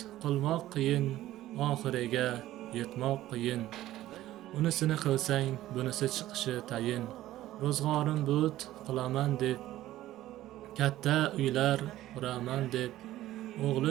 qilmoq qiyin, oxiriga yetmoq qiyin. Unisini qilsang, bunisi chiqishi tayin. Ro'zg'orim but qilaman deb, katta uylar quraman deb,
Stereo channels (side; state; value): left; quieter; 14.7 dB